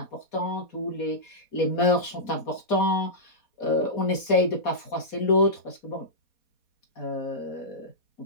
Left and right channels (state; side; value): late; right; 4.2 ms